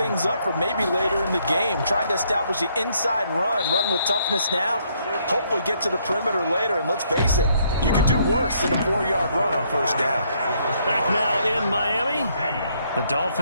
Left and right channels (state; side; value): inverted; both; correlation -0.70